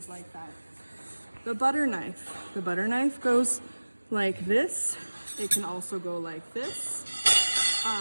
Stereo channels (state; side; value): inverted; both; correlation -1.00